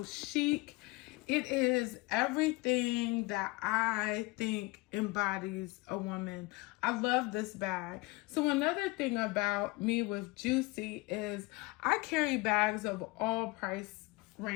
chic. It is everything that I think embodies a woman. I love this bag. So another thing about me with Juicy is I carry bags of all price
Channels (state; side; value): quieter; right; 23.4 dB